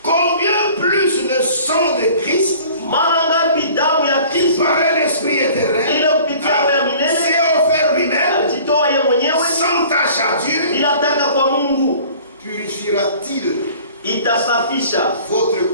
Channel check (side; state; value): both; inverted; correlation -0.48